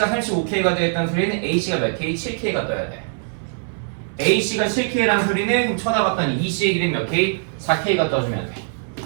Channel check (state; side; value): silent; left; 59 dB below the other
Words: 35K가 되었다는 소리는 AC가 몇 K? 7K가 떠야 돼. AC가 7K라는 소리는 그럼 쳐다봤더니 EC의 길이 몇 K? 4K가 떠주면 돼.